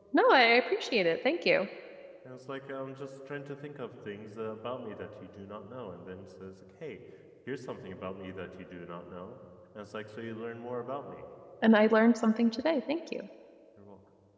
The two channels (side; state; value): both; identical; correlation 1.00